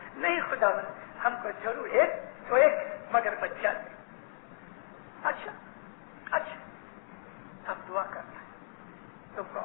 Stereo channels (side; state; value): right; silent; digital silence